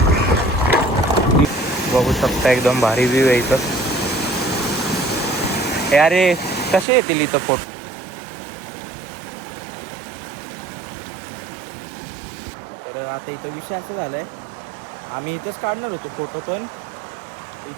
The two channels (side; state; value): left; drops out; at 6.9 s